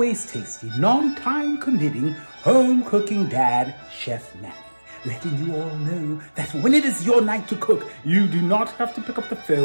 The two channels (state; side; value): inverted; both; correlation -1.00